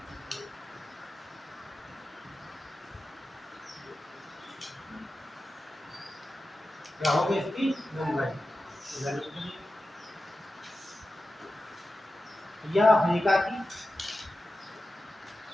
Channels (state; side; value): normal; both; correlation 0.93